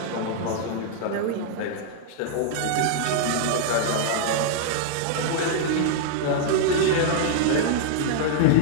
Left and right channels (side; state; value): both; different; correlation -0.01